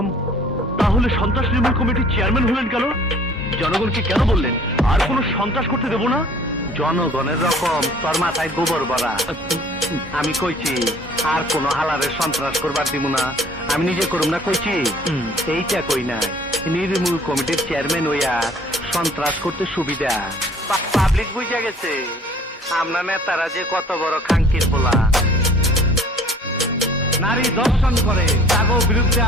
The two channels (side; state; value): both; normal; correlation 0.53